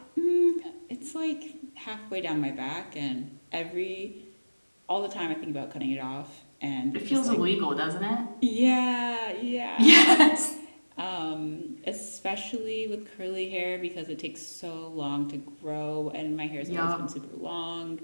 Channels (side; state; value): both; inverted; correlation -1.00